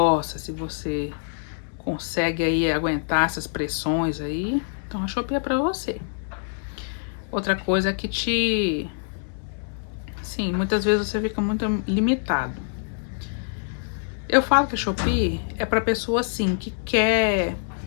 se você consegue aí aguentar essas pressões aí, então a Shopee é pra você. Outra coisa é que sim, muitas vezes você fica muito limitado. Eu falo que a Shopee é pra pessoa assim que quer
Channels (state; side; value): silent; right; digital silence